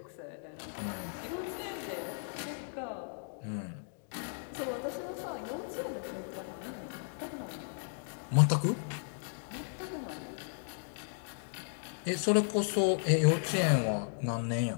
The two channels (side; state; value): right; silent; digital silence